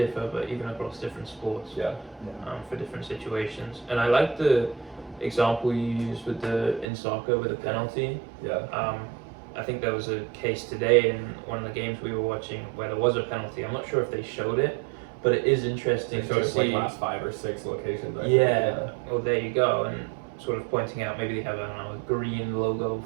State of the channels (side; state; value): left; drops out; at 6.9 s